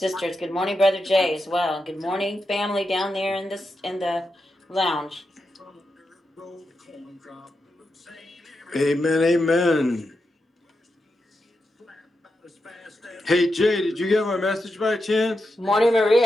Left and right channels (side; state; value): both; normal; correlation 0.87